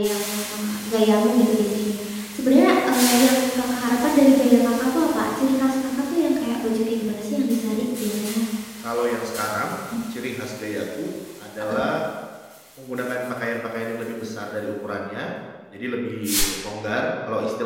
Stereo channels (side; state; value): both; identical; correlation 1.00